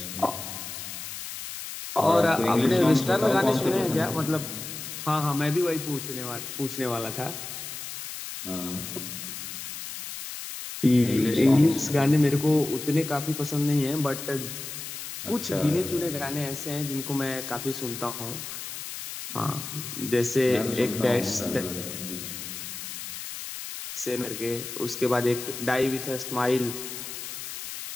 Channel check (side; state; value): left; noise; hiss, 8 dB below the sound